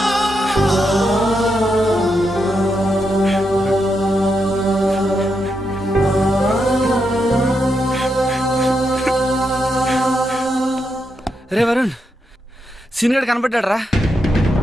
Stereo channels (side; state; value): both; normal; correlation 0.83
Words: రే వరుణ్, సీనియర్ కనబడ్డాడు రా.